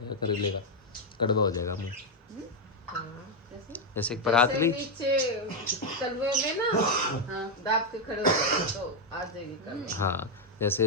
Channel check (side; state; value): both; normal; correlation 0.03